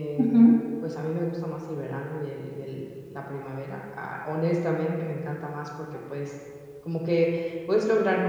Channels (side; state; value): both; identical; correlation 1.00